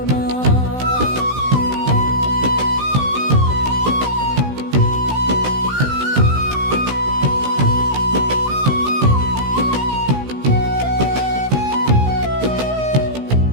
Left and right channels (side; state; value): left; late; 16 ms